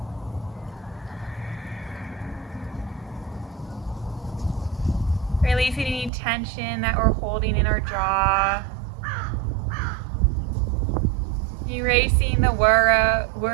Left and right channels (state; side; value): drops out; left; at 6.1 s